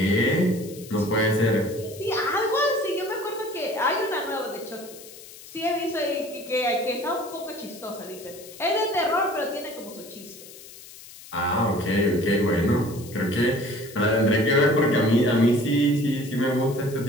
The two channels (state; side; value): noise; left; hiss, 18 dB below the sound